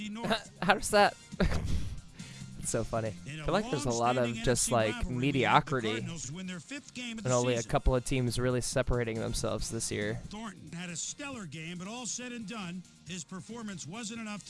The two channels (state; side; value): identical; both; correlation 1.00